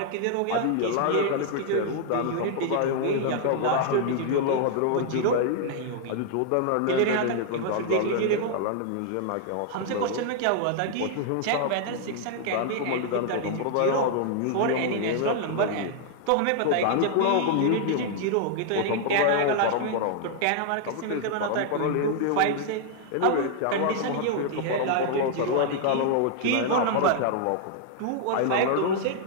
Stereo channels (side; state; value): both; different; correlation 0.00